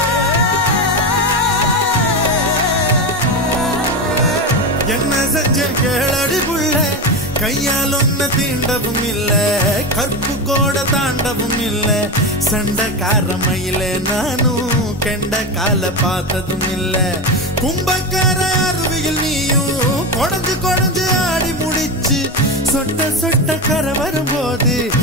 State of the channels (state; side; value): normal; both; correlation 0.18